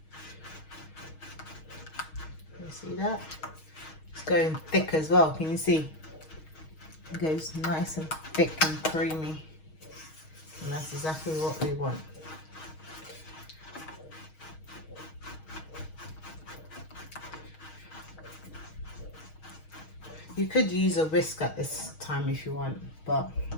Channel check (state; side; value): late; right; 6.4 ms